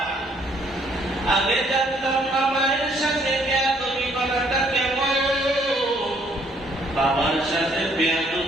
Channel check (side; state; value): both; normal; correlation 0.66